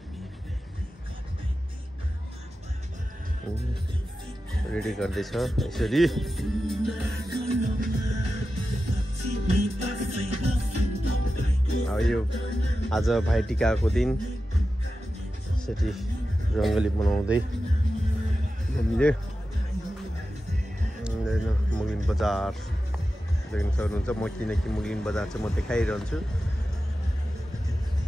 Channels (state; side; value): normal; both; correlation 0.92